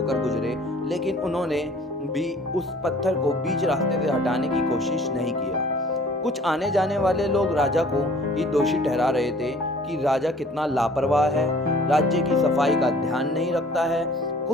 गुजरे, लेकिन उन्होंने भी उस पत्थर को बीच रास्ते से हटाने की कोशिश नहीं किया। कुछ आने जाने वाले लोग राजा को ही दोषी ठहरा रहे थे कि राजा कितना लापरवाह है, राज्य की सफाई का ध्यान नहीं रखता है।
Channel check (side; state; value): both; normal; correlation 0.52